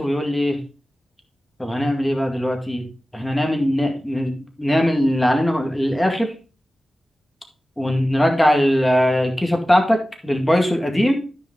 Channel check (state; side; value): normal; both; correlation 0.96